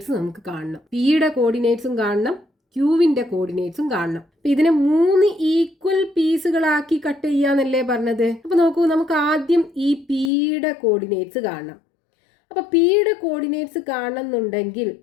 നമുക്ക് കാണണം. പിയുടെ കോർഡിനേറ്റ്സും കാണണം, ക്യൂവിന്റെ കോർഡിനേറ്റ്സും കാണണം. ഇതിനെ 3 ഈക്വൽ പീസുകളാക്കി കട്ട് ചെയ്യാന്നല്ലേ പറഞ്ഞത്. അപ്പൊ നോക്കൂ, നമുക്ക് ആദ്യം ഈ പിയുടെ കോർഡിനേറ്റ്സ് കാണണം. അപ്പൊ പിയുടെ കോർഡിനേറ്റ്സ് കാണണമെന്നുണ്ടെങ്കിൽ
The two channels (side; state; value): right; drops out; at 10.3 s